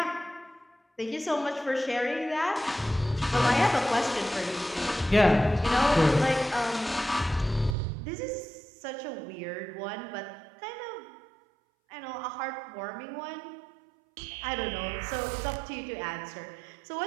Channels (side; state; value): left; drops out; at 7.8 s